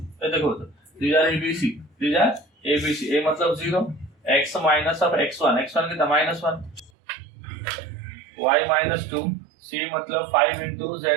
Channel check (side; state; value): left; drops out; at 6.9 s